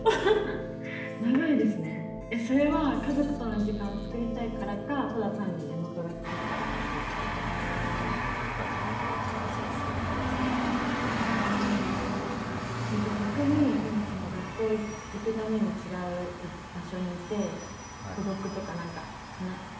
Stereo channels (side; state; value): both; identical; correlation 1.00